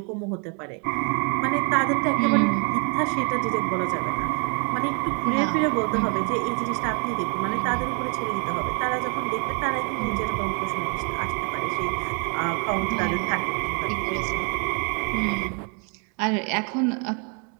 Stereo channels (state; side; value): quieter; left; 36.5 dB